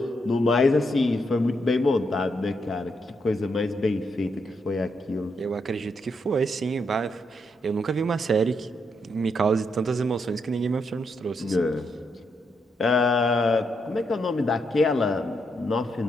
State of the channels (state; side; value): normal; both; correlation 0.79